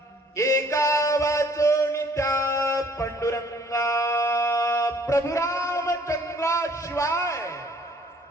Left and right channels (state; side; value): normal; both; correlation 0.58